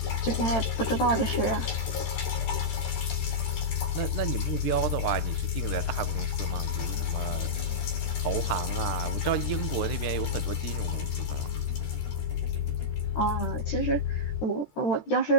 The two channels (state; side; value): late; right; 13 ms